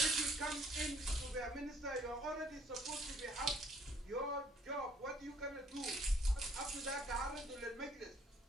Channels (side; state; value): both; normal; correlation 0.63